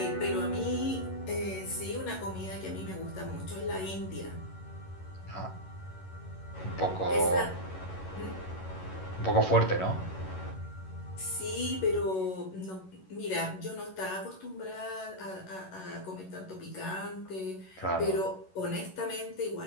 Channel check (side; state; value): right; late; 11 ms